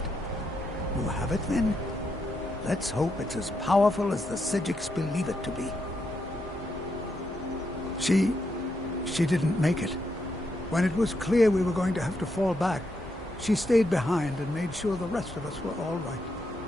You have it, then? Let's hope it's as powerful as the Psijics believe it to be. She didn't make it. When it was clear we were going to have to fall back, she stayed behind and made sure the rest of us were all right.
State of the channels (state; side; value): normal; both; correlation 0.81